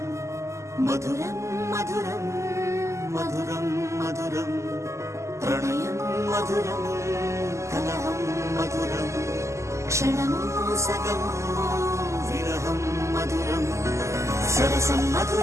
మధురం మధురం మధురం మధురం ప్రణయం మధురం కలహం మధురం క్షణము సగము విరహం మధురం సరసం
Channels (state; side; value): late; left; 0.14 ms